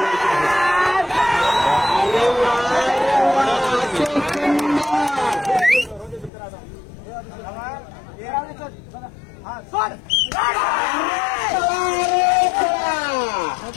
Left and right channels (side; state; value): right; drops out; at 6.3 s